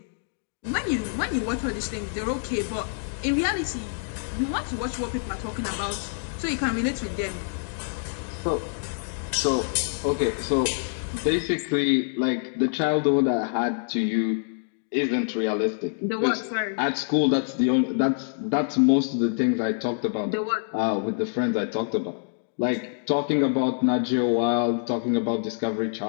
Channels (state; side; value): silent; right; digital silence